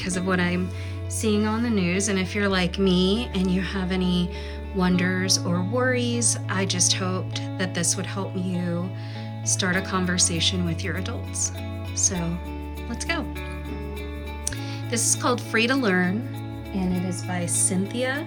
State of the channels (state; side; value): identical; both; correlation 1.00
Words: of what I'm seeing on the news. And if you're like me and you have any wonders or worries, I just hoped that this would help you start a conversation with your adults. So let's go. This is called Free to Learn, and it is by Cynthia